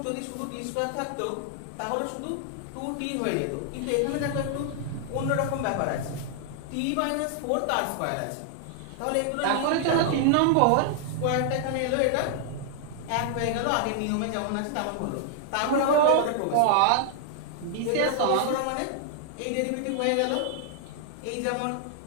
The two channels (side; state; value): both; different; correlation -0.01